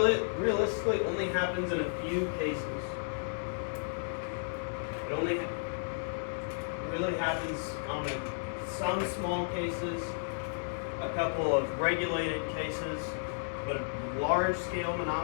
only happens in a few cases. It only really happens on some small cases, a couple of regulated cases, but large-scale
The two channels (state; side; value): silent; right; digital silence